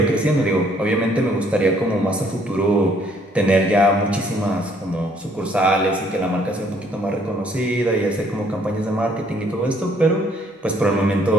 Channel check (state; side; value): normal; both; correlation 0.64